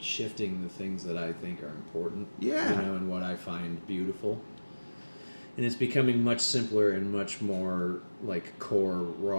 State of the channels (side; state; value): both; inverted; correlation -1.00